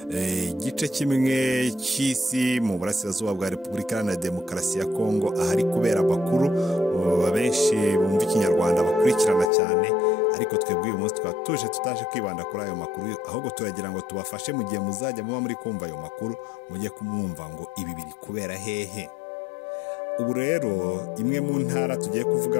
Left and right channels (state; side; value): drops out; right; at 9.5 s